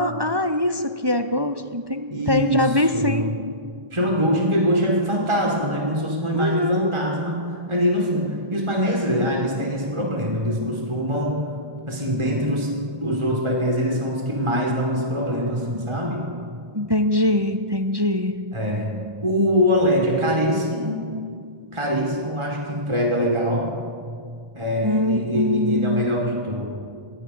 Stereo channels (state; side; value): late; left; 1.2 ms